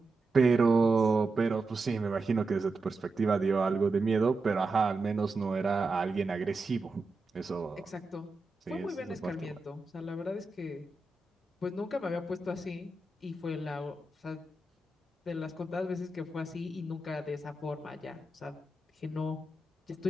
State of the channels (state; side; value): quieter; left; 3.2 dB